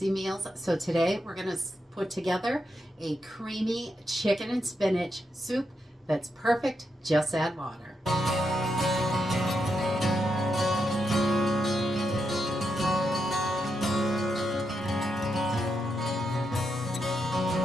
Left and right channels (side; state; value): both; normal; correlation 0.83